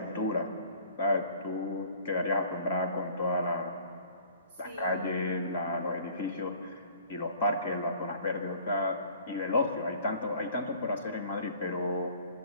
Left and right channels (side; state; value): both; inverted; correlation -0.51